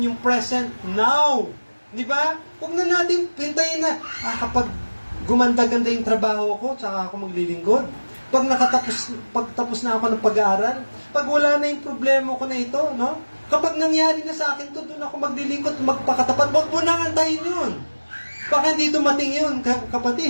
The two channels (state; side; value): inverted; both; correlation -1.00